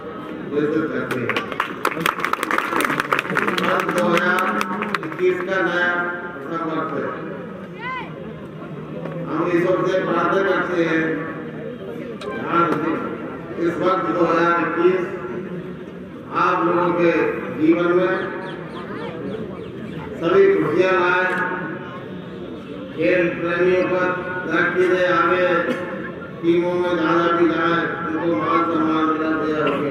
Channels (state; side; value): identical; both; correlation 1.00